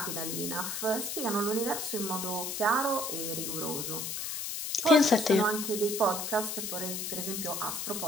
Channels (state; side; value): noise; left; hiss, 3 dB below the sound